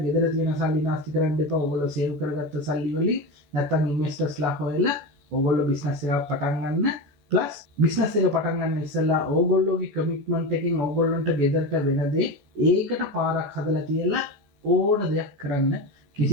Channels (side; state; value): left; late; 14 ms